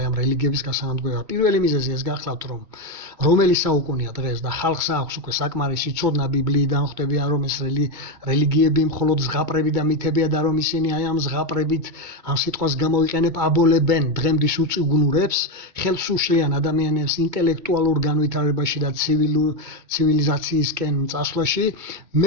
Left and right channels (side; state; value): left; late; 2.2 ms